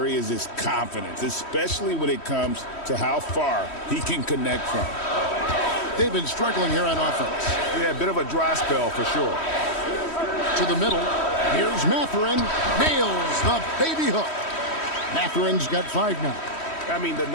is his confidence, especially when it comes to how far he can connect from. They've been struggling here on offense. Yeah, a bit of a dry spell for sure. To the middle. Here's Mathurin. Nails the baby hook. Mathurin's got 5 now. I mean, the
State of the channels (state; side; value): late; right; 3.1 ms